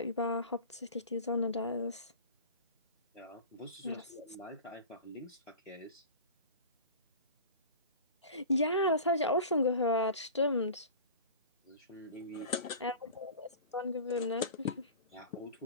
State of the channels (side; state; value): both; inverted; correlation -0.36